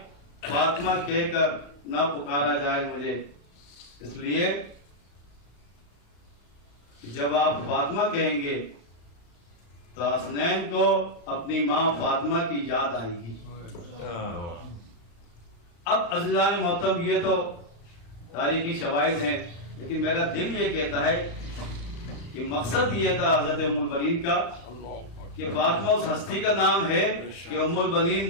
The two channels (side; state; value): right; late; 35 ms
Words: فاطمہ کہہ کر نہ پکارا جائے مجھے، اس لیے جب آپ فاطمہ کہیں گے تو حسنین کو اپنی ماں فاطمہ کی یاد آئے گی۔ اب عزیزان محترم، یہ تو تاریخی شواہد ہیں، لیکن میرا دل یہ کہتا ہے کہ مقصد یہ تھا حضرت ام البنین کا کہ فاطمہ اس ہستی کا نام ہے کہ ام البنین